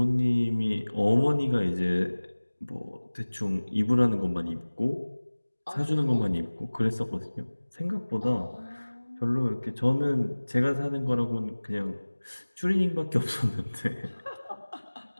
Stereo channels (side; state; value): both; inverted; correlation -1.00